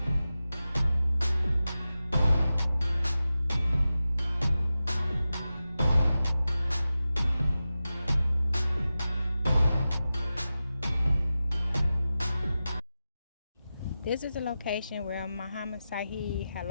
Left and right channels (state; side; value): inverted; both; correlation -0.93